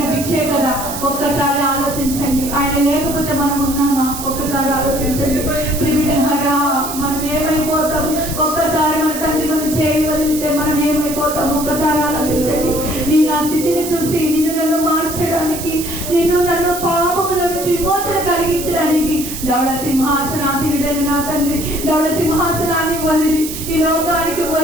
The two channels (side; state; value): right; noise; hiss, 8 dB below the sound